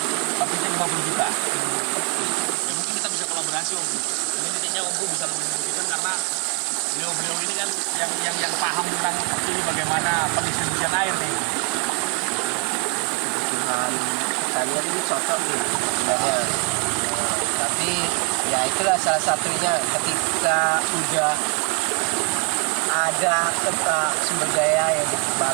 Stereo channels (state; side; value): quieter; left; 36.7 dB